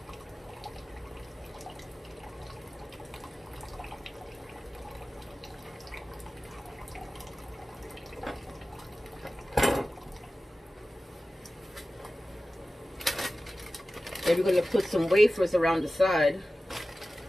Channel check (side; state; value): both; normal; correlation 0.95